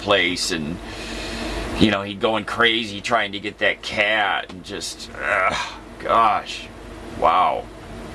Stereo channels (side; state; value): both; identical; correlation 1.00